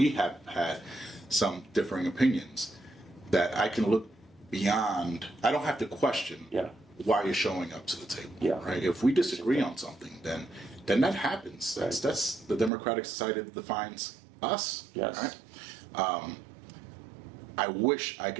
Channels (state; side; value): drops out; left; at 12.7 s